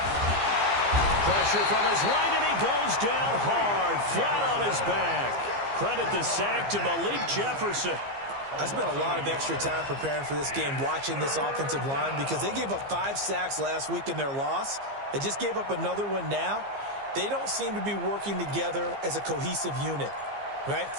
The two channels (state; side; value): late; left; 15 ms